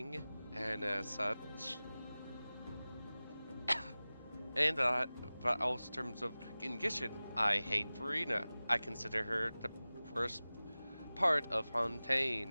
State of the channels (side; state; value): both; inverted; correlation -0.97